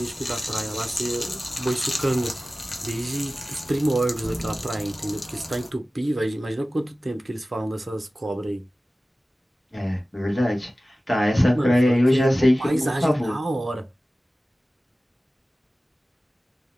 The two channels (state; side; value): normal; both; correlation 0.96